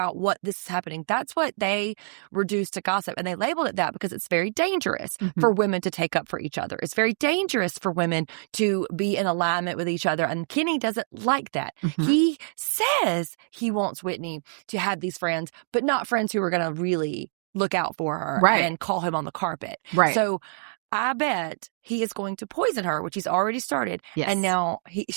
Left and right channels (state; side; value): silent; left; digital silence